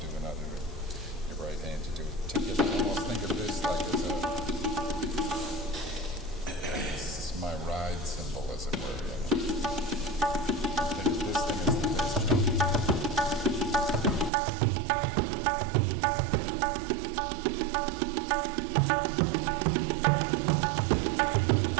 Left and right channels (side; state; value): left; drops out; at 14.3 s